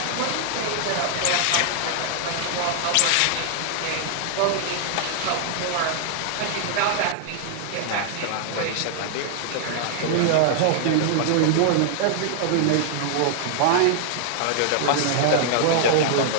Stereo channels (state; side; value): different; both; correlation -0.01